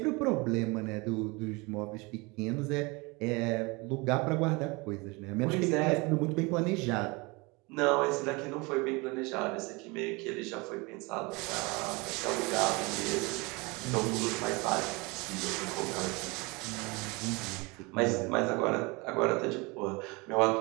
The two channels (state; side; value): quieter; left; 26.5 dB